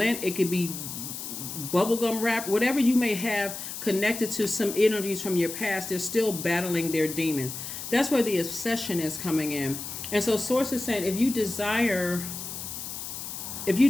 It could be bubblegum wrap, whatever you may have connected to some energies from your past. They're still battling their demons. That's where the obsession is coming in. And so source is saying if you desire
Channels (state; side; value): noise; left; hiss, 8 dB below the sound